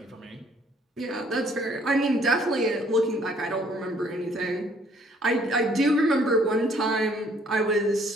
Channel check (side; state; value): both; normal; correlation 0.62